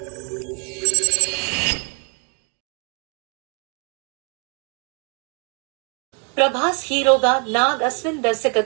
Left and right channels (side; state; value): left; quieter; 38.7 dB